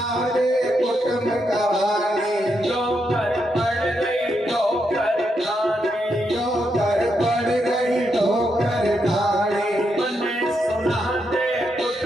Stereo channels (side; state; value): both; normal; correlation 0.81